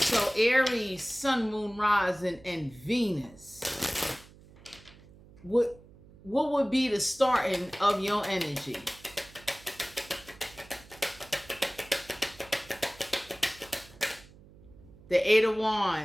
Aries, Sun, Moon, Rising, and Venus. What would be the starting of your energy? The Eight of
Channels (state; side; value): noise; right; hum, 23 dB below the sound